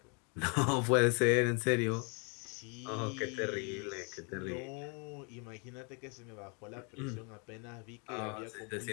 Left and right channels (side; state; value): right; quieter; 35.3 dB